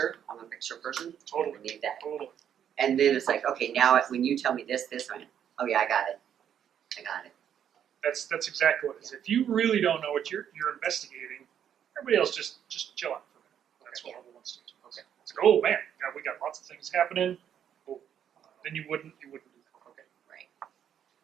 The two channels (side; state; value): left; quieter; 9.2 dB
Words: I'm a picture person. Totally. I need that. Totally. And then it's like, okay, now when you tell me this, I'm like, oh yeah, I got it. That's exactly what it is. If you really don't know what you're investigating, everybody else just chill out for a minute. That's what level 1 staging is. Okay. It's like, oh man, we got lots of things happening. Oh, then you wouldn't do that. Okay. Right.